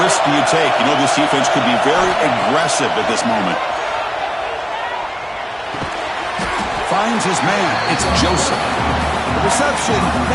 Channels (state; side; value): identical; both; correlation 1.00